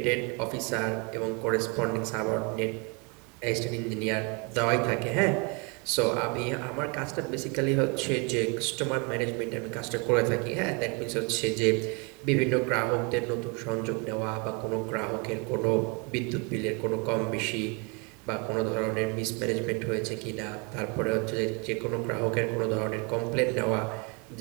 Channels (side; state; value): left; quieter; 32.2 dB